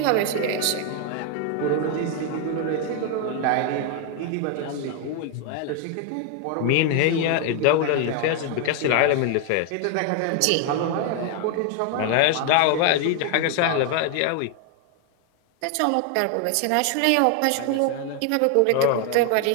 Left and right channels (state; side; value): different; both; correlation 0.00